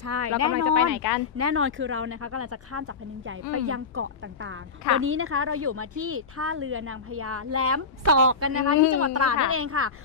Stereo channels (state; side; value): quieter; right; 4.9 dB